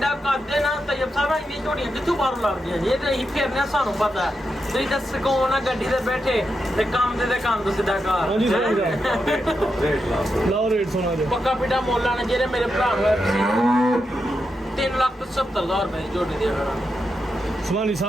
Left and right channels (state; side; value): normal; both; correlation 0.86